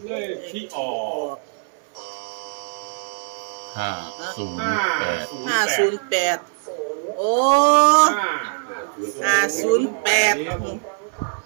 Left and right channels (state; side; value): silent; left; 60 dB below the other